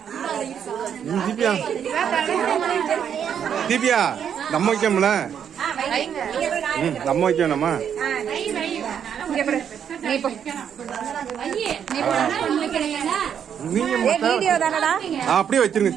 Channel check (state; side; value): quieter; left; 8.4 dB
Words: தீபியா நம்ம வைக்கோம்ல, நம்ம வைக்கணுமா? அப்படியே வச்சிருங்க.